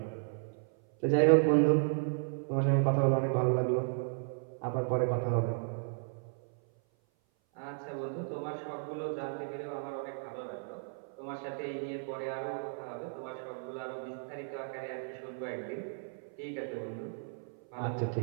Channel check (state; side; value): silent; left; 55 dB below the other